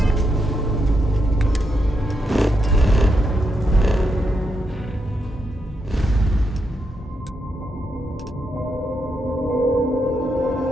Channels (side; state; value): both; normal; correlation 0.82